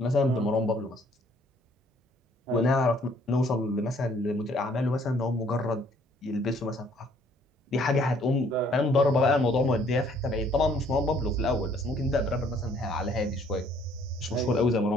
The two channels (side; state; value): both; normal; correlation 0.62